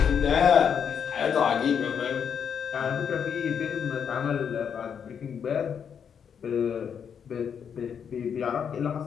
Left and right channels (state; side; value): quieter; right; 7.5 dB